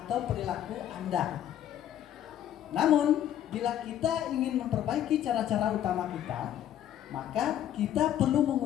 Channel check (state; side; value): quieter; right; 11.1 dB